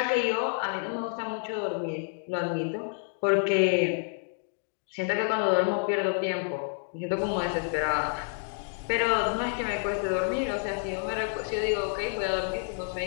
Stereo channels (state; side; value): silent; right; 59 dB below the other